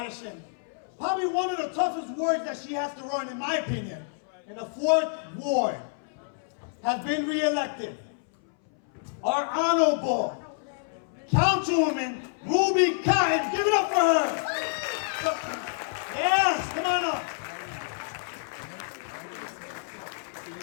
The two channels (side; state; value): right; silent; 59 dB below the other